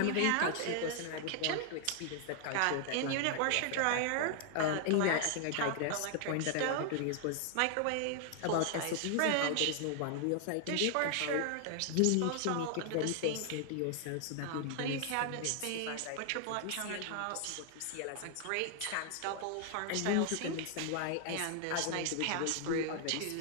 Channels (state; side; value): different; both; correlation 0.00